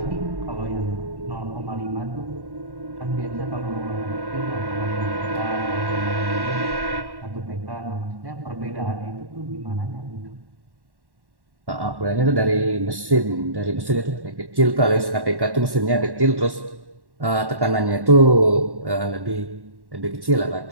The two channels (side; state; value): left; late; 1.1 ms